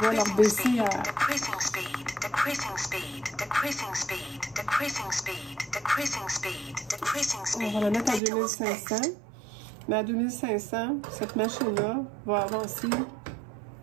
leur baisser à... On va la mettre à 2500. Mais à 2500, cette machine-là va avancer. Je ne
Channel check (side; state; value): left; drops out; at 8.2 s